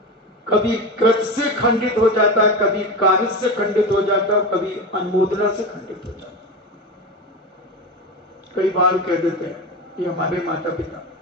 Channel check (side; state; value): both; normal; correlation 0.23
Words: कभी कृत से खंडित हो जाता है, कभी कार्य से खंडित हो जाता है, कभी अनुमोदना से खंडित हो जाता है। कई बार कह देते हैं ये हमारे माता पिता,